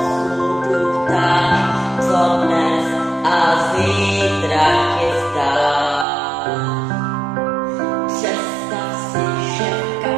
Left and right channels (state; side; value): drops out; left; at 6.1 s